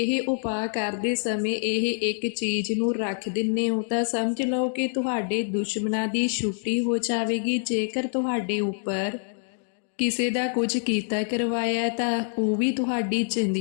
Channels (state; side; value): silent; right; 61 dB below the other